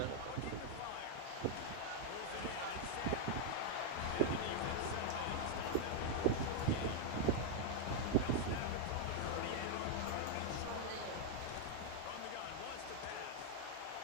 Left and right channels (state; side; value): different; both; correlation 0.00